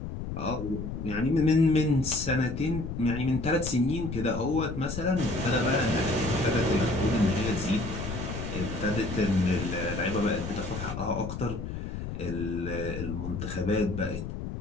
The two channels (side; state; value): left; noise; rumble, 6 dB below the sound